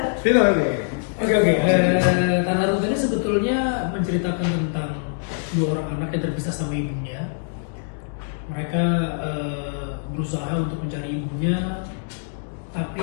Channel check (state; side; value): silent; right; digital silence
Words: Vino nih. Oke. Tanah Runtuh ini sebetulnya menceritakan tentang dua orang anak yang terpisah sama ibunya. Mereka berusaha untuk mencari ibunya, tapi